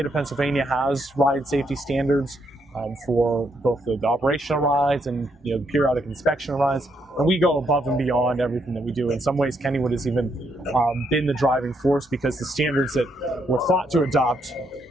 of Pennsylvania has ride safety standards for both the operational rides and the periodic inspection rides. and we go above and beyond everything that we do. In some ways, Kennywood has even been the driving force, because the standards that we're thought to adopt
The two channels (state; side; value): normal; both; correlation 0.76